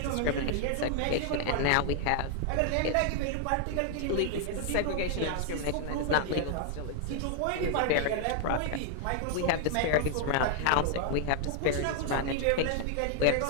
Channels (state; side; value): different; both; correlation 0.00